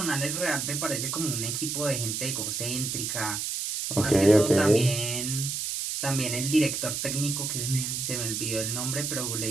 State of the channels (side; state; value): right; noise; hiss, 2 dB below the sound